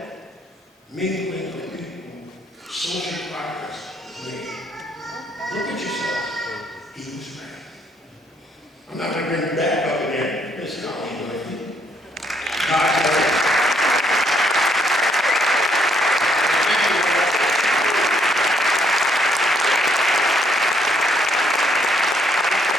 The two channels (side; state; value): both; normal; correlation 0.70